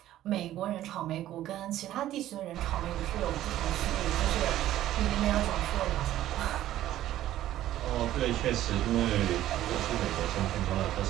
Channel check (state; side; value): quieter; left; 13.4 dB